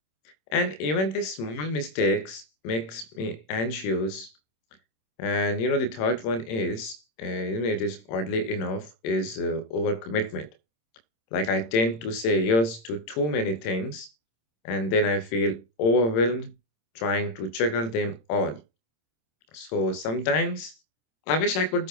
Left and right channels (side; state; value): right; late; 26 ms